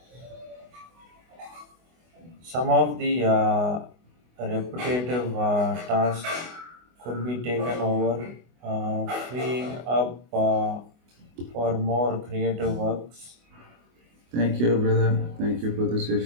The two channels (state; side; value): late; left; 24 ms